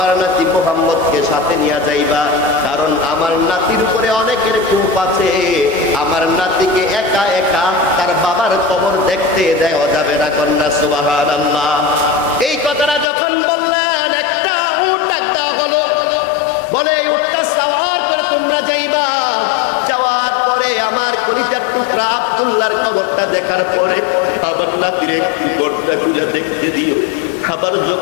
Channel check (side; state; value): right; drops out; at 13.1 s